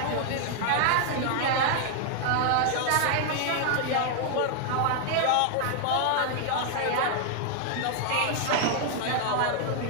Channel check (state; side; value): different; both; correlation 0.00